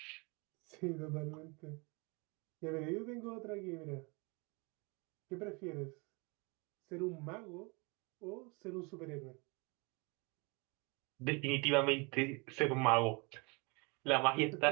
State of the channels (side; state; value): left; quieter; 29.9 dB